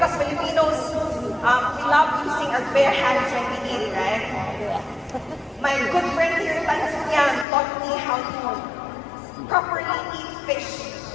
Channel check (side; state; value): right; drops out; at 7.5 s